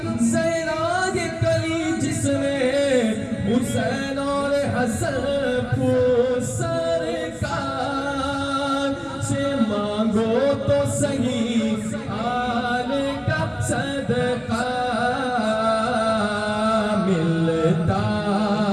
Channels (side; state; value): both; identical; correlation 1.00